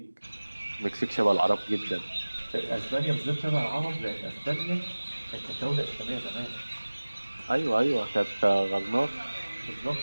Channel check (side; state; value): both; inverted; correlation -1.00